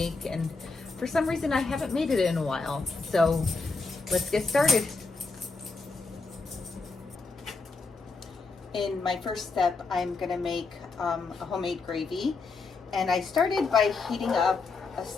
and for some reason I haven't made it in a while. So let's get started. In my first step, I'm gonna make a homemade gravy, and I started by heating up a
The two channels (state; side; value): quieter; right; 4.1 dB